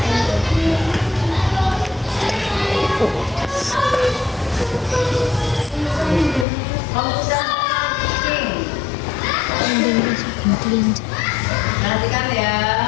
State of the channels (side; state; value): right; drops out; at 6.5 s